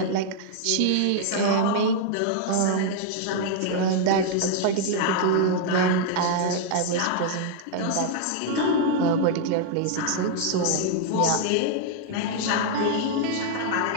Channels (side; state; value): both; different; correlation 0.00